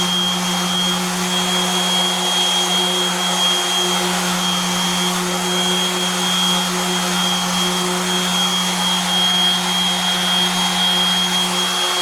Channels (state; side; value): identical; both; correlation 1.00